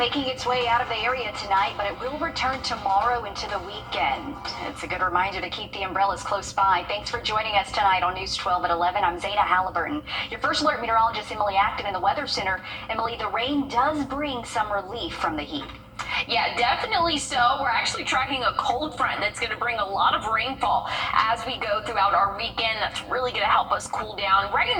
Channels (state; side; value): identical; both; correlation 1.00